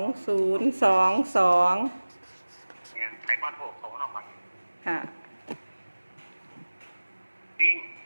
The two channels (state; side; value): inverted; both; correlation -1.00